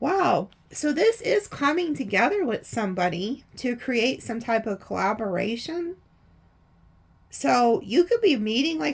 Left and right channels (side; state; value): both; identical; correlation 1.00